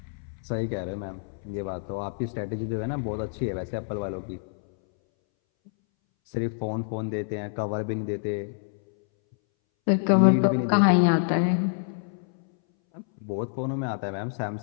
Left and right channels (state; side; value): silent; right; 60 dB below the other